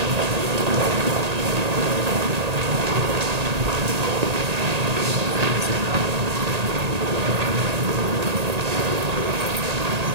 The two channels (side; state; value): left; late; 1.8 ms